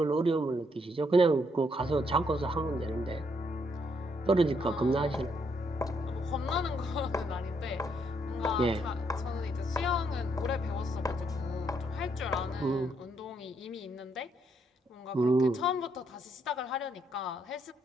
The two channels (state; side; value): normal; both; correlation 0.74